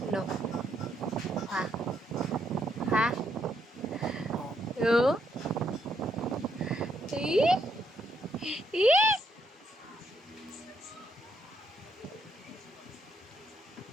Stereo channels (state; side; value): normal; both; correlation 0.75